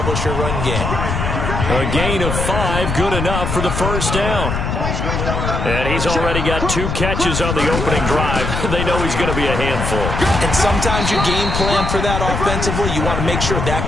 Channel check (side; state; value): left; noise; rumble, 2 dB below the sound